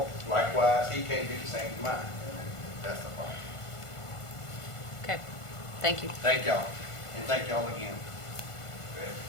likewise, he can't do the same to mine. And that's the problem. Okay, thank you. Thank y'all, and thank y'all again.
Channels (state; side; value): late; right; 1.5 ms